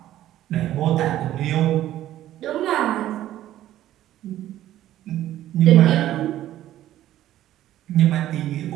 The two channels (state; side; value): quieter; left; 13.2 dB